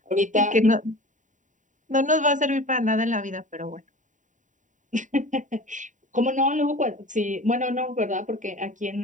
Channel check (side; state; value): left; late; 0.36 ms